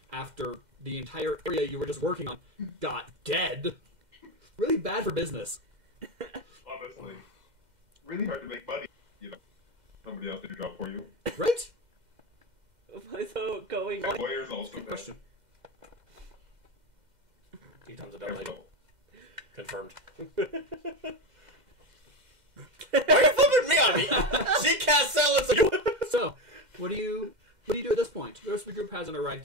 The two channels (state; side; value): late; left; 2.1 ms